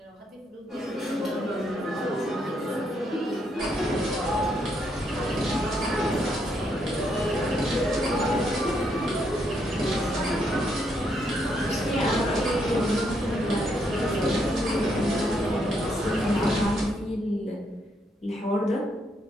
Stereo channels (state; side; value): normal; both; correlation 0.75